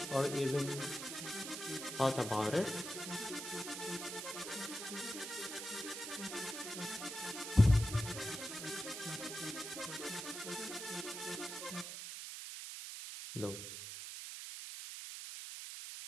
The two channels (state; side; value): noise; right; hiss, 7 dB below the sound